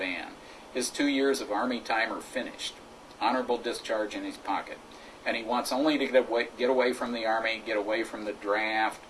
His 2 years of Army time are finished, honorable discharge in his pocket, and he wants only to get away from the Army, get away from the draft,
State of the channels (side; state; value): both; identical; correlation 1.00